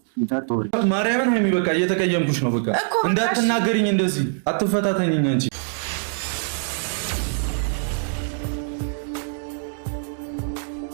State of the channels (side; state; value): left; silent; digital silence